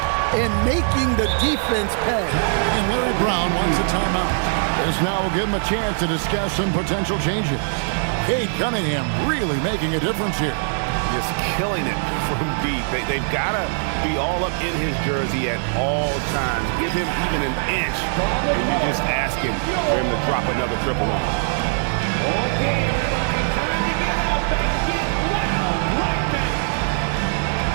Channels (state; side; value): silent; left; 63 dB below the other